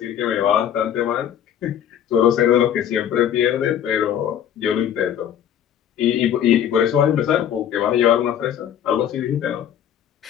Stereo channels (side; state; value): right; quieter; 9.8 dB